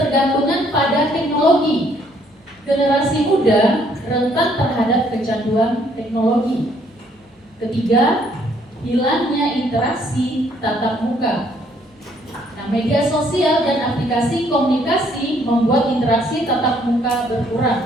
pada teknologi. Generasi muda rentan terhadap kecanduan teknologi. Ketiga, hilangnya interaksi tatap muka. Nah, media sosial dan aplikasi komunikasi membuat interaksi tatap muka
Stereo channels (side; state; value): both; normal; correlation 0.66